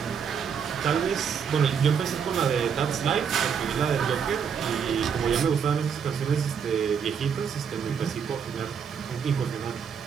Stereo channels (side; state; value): left; quieter; 7.0 dB